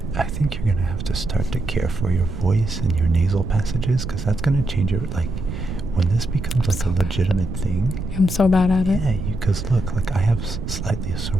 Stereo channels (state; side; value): noise; right; rumble, 6 dB below the sound